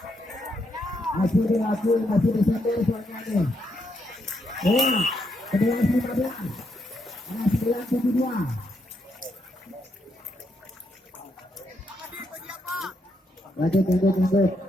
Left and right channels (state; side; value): normal; both; correlation 0.78